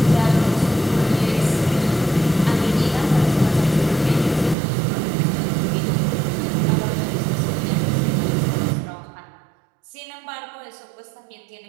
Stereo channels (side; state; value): left; drops out; at 4.5 s